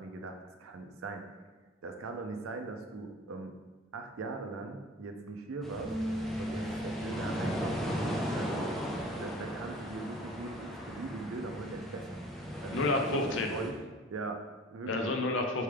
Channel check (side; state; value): both; normal; correlation 0.43